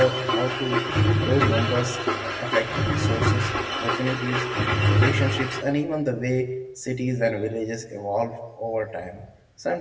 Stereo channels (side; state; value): both; identical; correlation 1.00